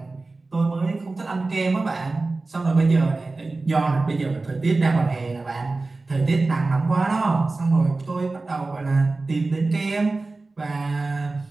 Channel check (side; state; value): left; quieter; 3.4 dB